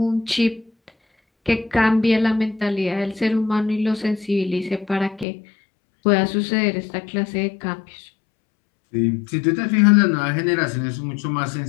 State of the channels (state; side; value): drops out; right; at 5.2 s